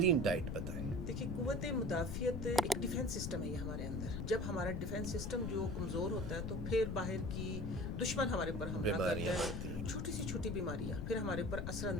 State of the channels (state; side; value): noise; left; rumble, 3 dB below the sound